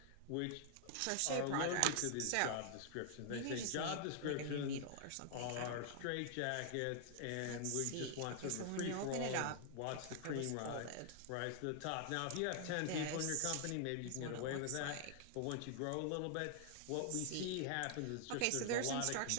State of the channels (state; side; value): different; both; correlation 0.00